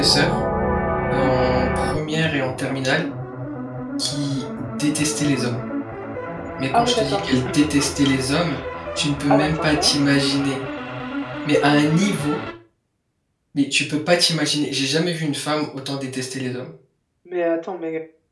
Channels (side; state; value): both; identical; correlation 1.00